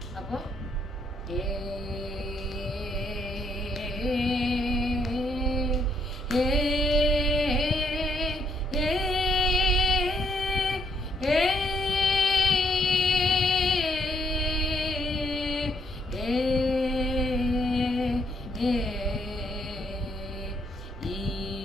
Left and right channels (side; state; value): both; normal; correlation 0.72